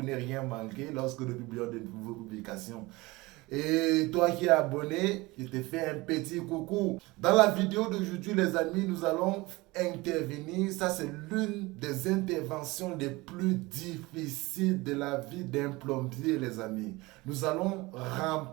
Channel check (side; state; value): left; quieter; 22.1 dB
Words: ne rien manquer lorsque nous publions de nouvelles publications. Et toi qui es abonné, je te fais un petit coucou. Dans la vidéo d'aujourd'hui, les amis, nous allons intervenir. Ça, c'est l'une des interventions les plus difficiles de la vie d'un plombier, les amis. Nous allons